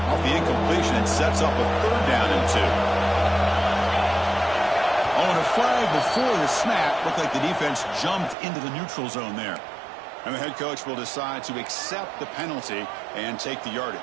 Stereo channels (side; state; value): left; drops out; at 8.3 s